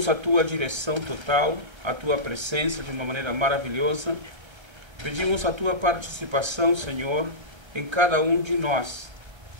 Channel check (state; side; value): late; left; 1.3 ms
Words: a Tua direção total, a Tua presença de uma maneira maravilhosa. Pedimos a Tua participação, Senhor, em cada um de nós.